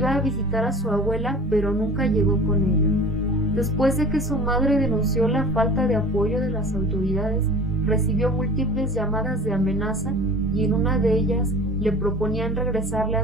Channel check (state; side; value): normal; both; correlation 0.42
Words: a visitar a su abuela, pero nunca llegó con ella. Después de que su madre denunció la falta de apoyo de las autoridades, recibió múltiples llamadas de amenaza y en una de ellas le proponían regresarle